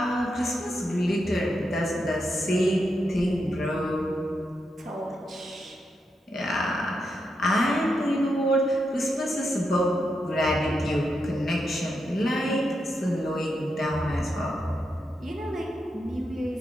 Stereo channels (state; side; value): normal; both; correlation 0.84